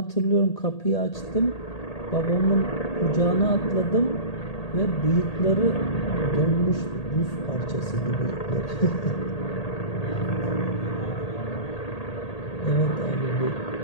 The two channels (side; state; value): right; late; 1.8 ms